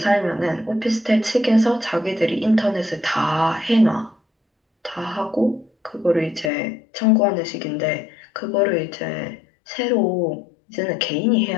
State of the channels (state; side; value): drops out; right; at 6.5 s